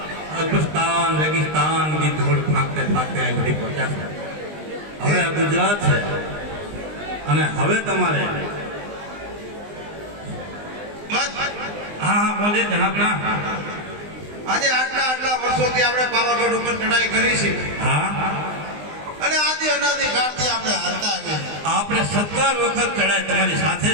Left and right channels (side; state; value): left; late; 20 ms